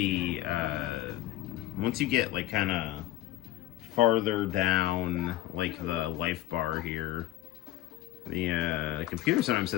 once you get like kind of farther down like the life bar here, the computer sometimes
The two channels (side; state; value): right; quieter; 14.9 dB